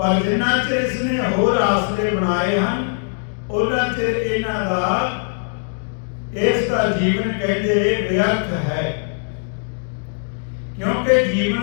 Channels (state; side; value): silent; right; digital silence